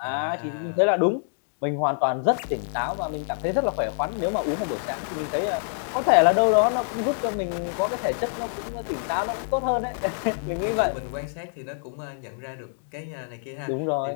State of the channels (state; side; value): silent; right; digital silence